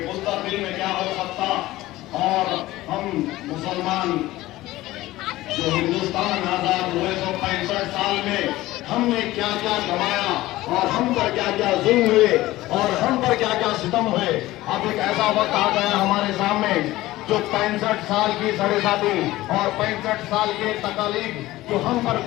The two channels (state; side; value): quieter; right; 17.2 dB